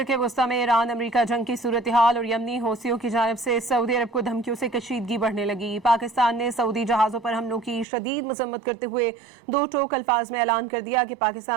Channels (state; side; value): drops out; left; at 7.9 s